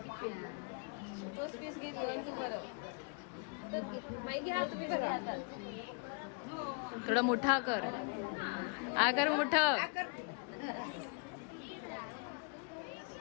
पीस घेतली आणि तू बरं बाई घ्या तुम्ही करा. थोडा मोठा कर. आकर मोठं.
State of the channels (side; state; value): right; quieter; 37.0 dB